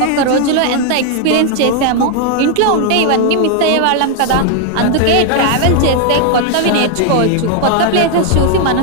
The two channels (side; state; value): both; different; correlation 0.00